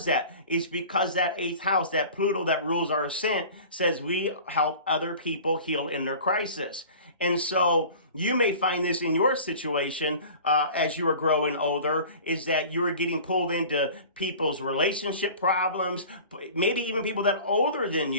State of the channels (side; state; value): both; inverted; correlation -0.41